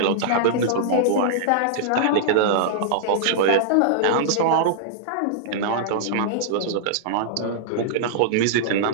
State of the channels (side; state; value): both; different; correlation -0.02